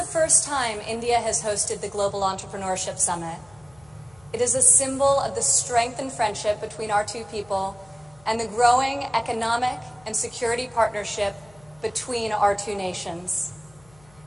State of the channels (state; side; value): noise; left; hum, 27 dB below the sound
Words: first time India has hosted the Global Entrepreneurship Summit. It is a symbol of the strength and friendship between our two people and the growing economic and security partnership between our two nations.